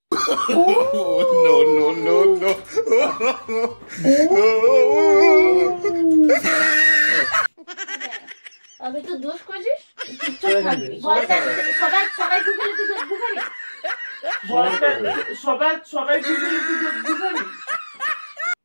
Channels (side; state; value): both; inverted; correlation -1.00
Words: No, no, no, no. আমি তো দোষ করছিস, সবাই সবাই গুগলে তুই গুগলে সবাই গুগলে তুই গুগলে।